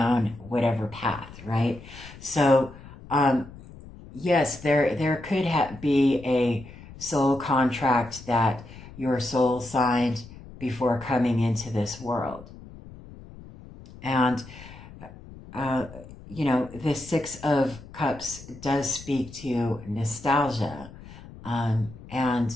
whatever path, right? So yes, there could be a soul contract that your soul signed before coming into this world. And, the Six of Cups does speak to nostalgia and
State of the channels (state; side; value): noise; left; rumble, 17 dB below the sound